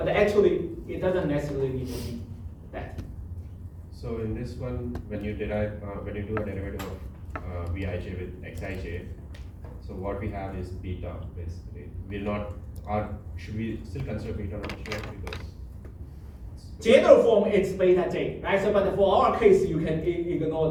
actually, it doesn't necessarily need to be that. So in this one, when you do a derivative of Vij with Xij, so what we have is beta basically. Should we still consider beta not sure because General form it's beta j, right? So, but for our case, you can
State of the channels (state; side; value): identical; both; correlation 1.00